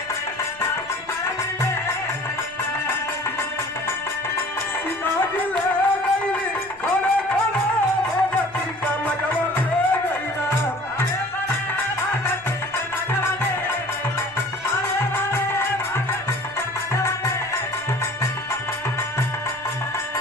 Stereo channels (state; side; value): noise; left; rumble, 26 dB below the sound